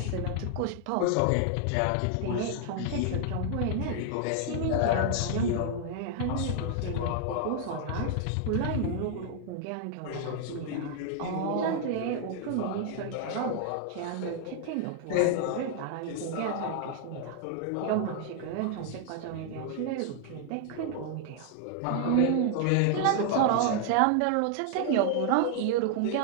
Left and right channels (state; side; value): different; both; correlation 0.00